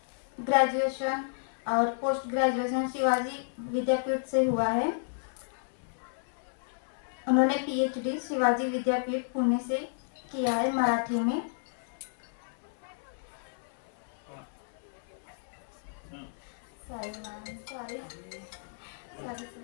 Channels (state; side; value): silent; right; 57 dB below the other